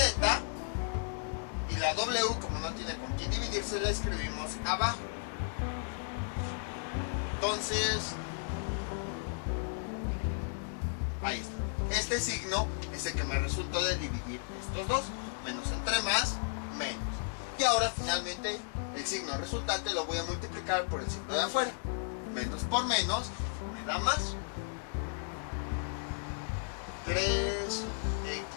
Y la W, como no tiene con quién dividirse, la escribimos abajo. Entonces, ahí está. Este signo es el que me resultó de dividir estos dos. Menos entre más, menos. Y ahora finalmente el signo resultante lo voy a multiplicar por el signo de afuera. Menos por menos me da más. 3x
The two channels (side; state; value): right; silent; digital silence